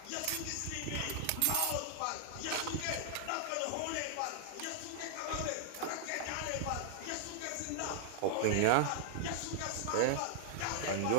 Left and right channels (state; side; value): different; both; correlation -0.01